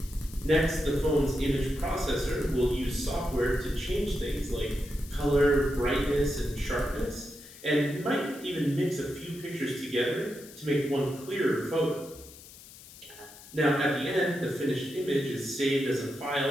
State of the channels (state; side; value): noise; left; hiss, 19 dB below the sound